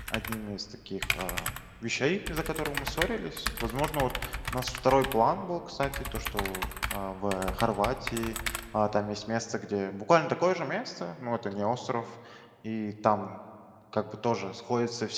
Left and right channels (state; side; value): identical; both; correlation 1.00